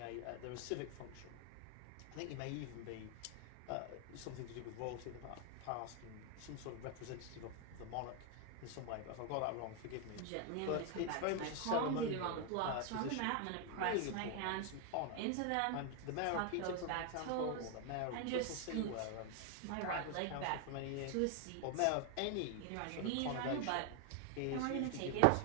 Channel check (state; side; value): different; both; correlation 0.00